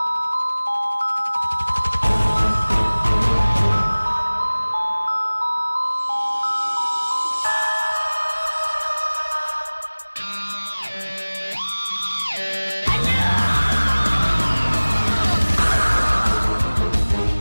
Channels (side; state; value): both; inverted; correlation -1.00